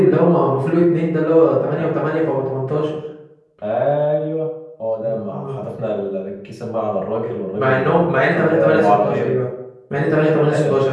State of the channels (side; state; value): both; identical; correlation 1.00